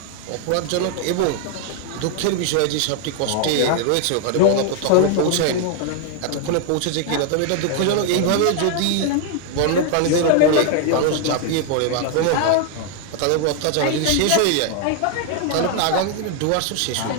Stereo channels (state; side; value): different; both; correlation 0.00